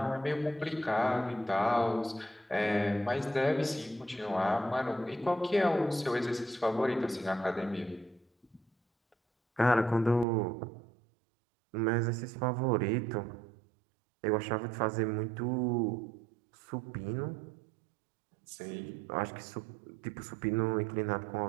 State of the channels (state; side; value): drops out; left; at 10.2 s